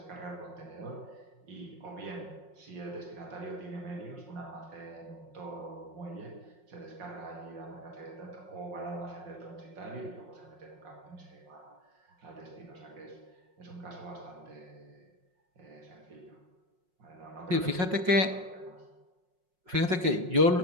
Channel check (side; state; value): left; late; 5.5 ms